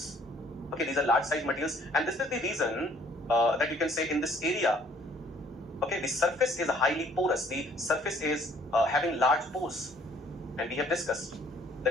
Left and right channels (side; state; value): both; normal; correlation 0.60